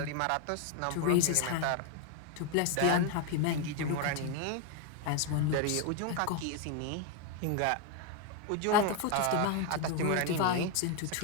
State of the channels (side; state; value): both; different; correlation 0.01